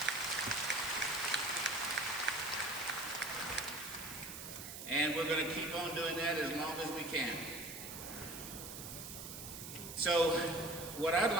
And we're going to keep on doing that as long as we can. So what I'd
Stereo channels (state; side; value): noise; right; hiss, 10 dB below the sound